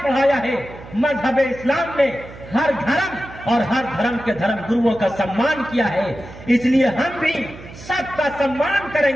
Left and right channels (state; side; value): noise; right; hum, 16 dB below the sound